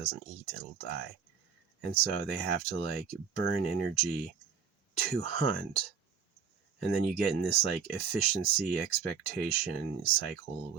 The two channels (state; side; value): quieter; left; 6.8 dB